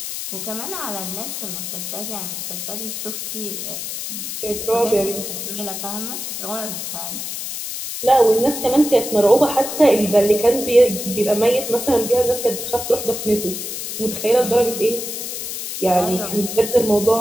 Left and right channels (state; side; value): noise; left; hiss, 6 dB below the sound